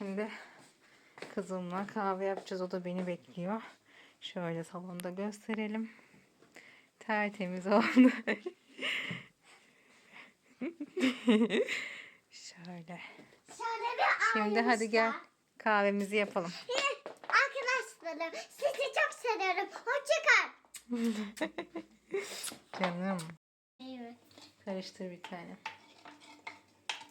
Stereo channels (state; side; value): identical; both; correlation 1.00